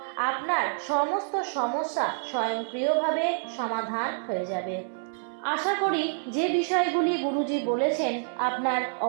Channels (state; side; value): silent; left; 60 dB below the other